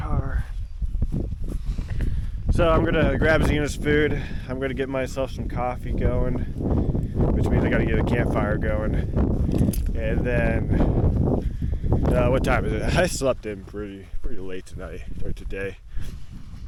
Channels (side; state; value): both; identical; correlation 1.00